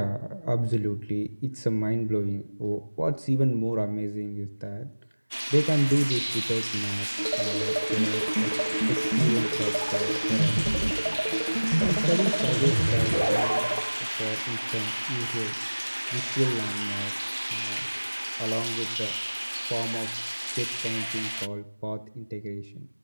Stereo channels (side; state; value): both; inverted; correlation -1.00